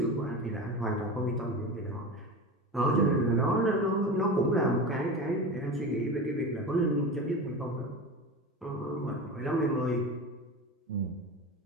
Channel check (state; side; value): normal; both; correlation 0.28